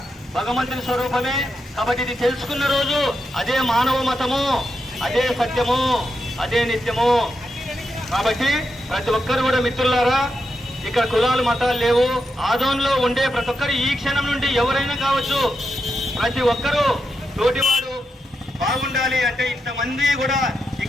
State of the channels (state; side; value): normal; both; correlation 0.85